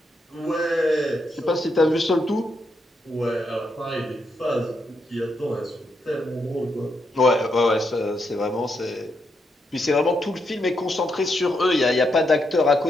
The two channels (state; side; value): normal; both; correlation 0.81